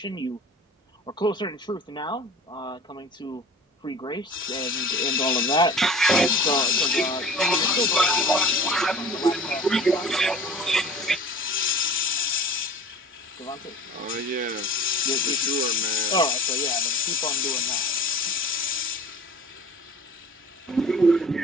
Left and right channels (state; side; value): normal; both; correlation 0.43